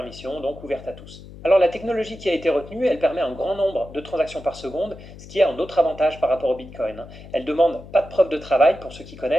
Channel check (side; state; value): left; noise; hum, 17 dB below the sound